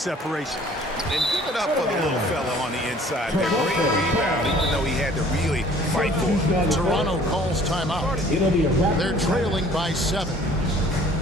And give it up for the little fella on the inside. That great rebound, even though he had to really fight for it. Toronto calls timeout. They're trailing by 7.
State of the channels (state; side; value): normal; both; correlation 0.53